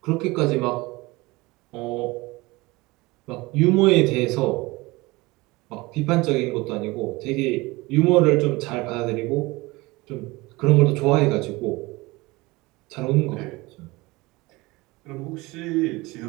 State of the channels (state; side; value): quieter; left; 22.2 dB